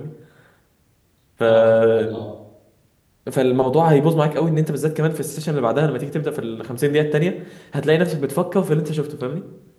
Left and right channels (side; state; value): both; identical; correlation 1.00